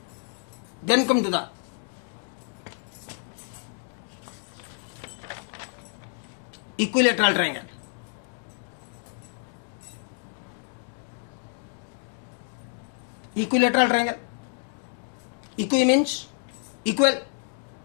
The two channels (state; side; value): silent; right; 56 dB below the other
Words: Then come to the equilateral triangle. Equilateral triangle. Equi means equal.